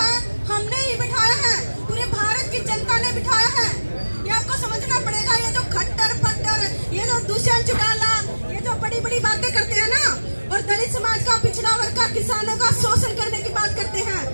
हमने ही बिठाया है, पूरे भारत की जनता ने बिठाया है। ये आपको समझना पड़ेगा। ये जो खट्टर पट्टर, ये जो दुष्यंत चौटाला, ये जो बड़ी बड़ी बातें करते हैं ना, और दलित समाज का, पिछड़ा वर्ग का, किसानों का शोषण करने की बात करते हैं,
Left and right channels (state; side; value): inverted; both; correlation -1.00